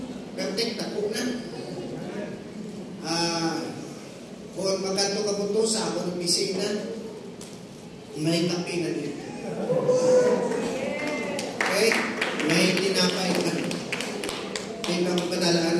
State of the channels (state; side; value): identical; both; correlation 1.00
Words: Gantik, tako na. Kung magkanto ka mo ito sa ako ng pisina, may kape na dito. Okay? May tinapay ka. May